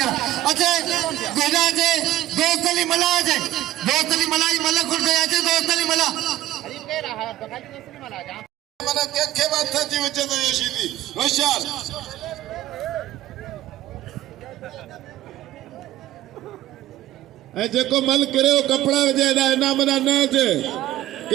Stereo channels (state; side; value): quieter; left; 14.6 dB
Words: अच्छा गोगा जे दोस्तली मला जे दोस्तली मलाई मला खुद गया जे दोस्तली मला माने के बात था जी वजह तो ये सीधी होशियार ए जेको मल करे कपड़ा जे ना मना न जे